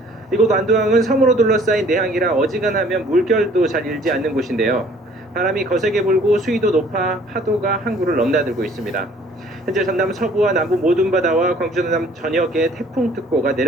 이곳 완도항은 섬으로 둘러싸인 내항이라 어지간하면 물결도 잘 일지 않는 곳인데요. 바람이 거세게 불고 수위도 높아 파도가 항구를 넘나들고 있습니다. 현재 전남 서부와 남부 모든 바다와 광주 전남 전역에 태풍특보가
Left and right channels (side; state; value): both; normal; correlation 0.56